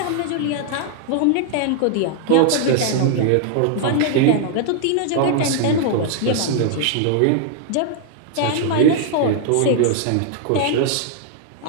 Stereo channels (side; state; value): both; different; correlation 0.00